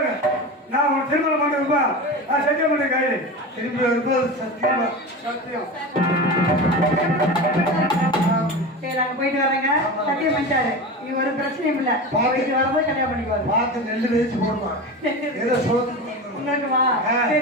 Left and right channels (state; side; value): normal; both; correlation 0.27